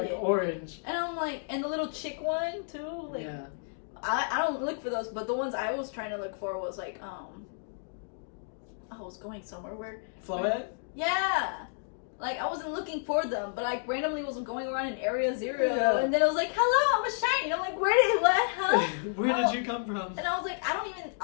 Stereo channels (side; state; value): right; silent; digital silence